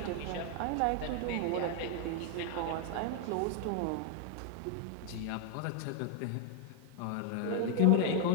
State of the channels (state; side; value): different; both; correlation 0.00